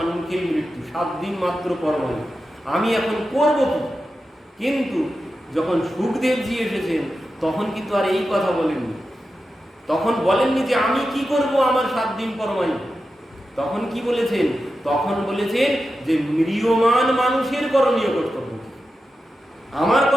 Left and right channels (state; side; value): normal; both; correlation 0.91